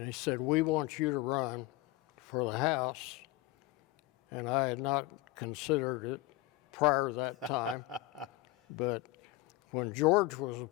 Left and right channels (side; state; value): right; quieter; 18.1 dB